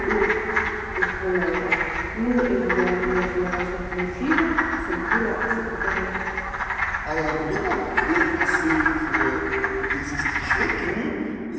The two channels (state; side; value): identical; both; correlation 1.00